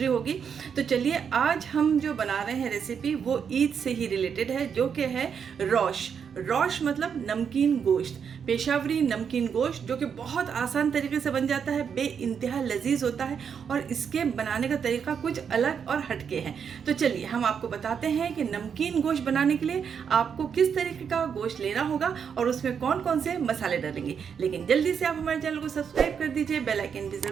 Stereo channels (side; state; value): left; quieter; 7.1 dB